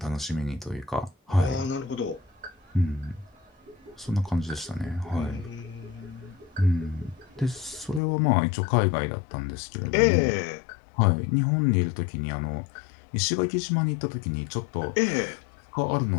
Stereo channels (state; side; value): drops out; right; at 8.0 s